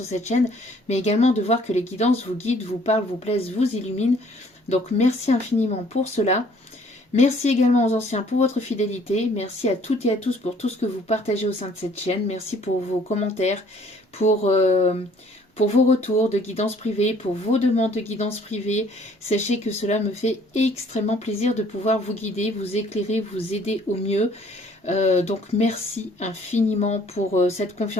cette chaîne, mais également de voir que les guidances vous guident, vous parlent, vous plaisent, vous illuminent. Donc merci infiniment pour cela. Merci également aux anciens pour votre fidélité. Merci à toutes et à tous pour tout ce que vous partagez au sein de cette chaîne. Merci pour vos commentaires, pour vos retours de guidance privée, pour vos demandes de guidance privée. Sachez que cela me fait extrêmement plaisir de pouvoir vous guider, vous éclairer, vous aider au mieux. Donc merci infiniment pour cette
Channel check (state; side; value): normal; both; correlation 0.58